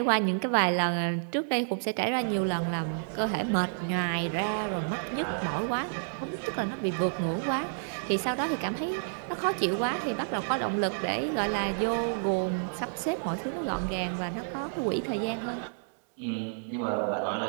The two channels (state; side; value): silent; left; digital silence